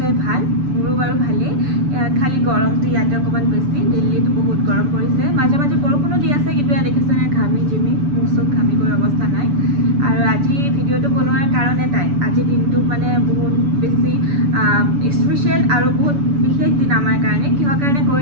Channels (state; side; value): late; left; 6.9 ms